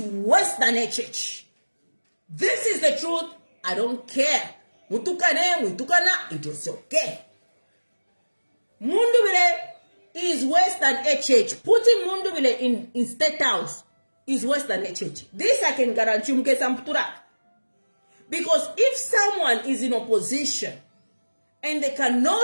worse than HH. This is the truth. I don't care. Mutukana, it is okay. Mundubile is worse than HH. Putting Mundubile in State House is worse than HH. This I can guarantee you. Because if someone is in opposition and they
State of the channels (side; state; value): both; inverted; correlation -1.00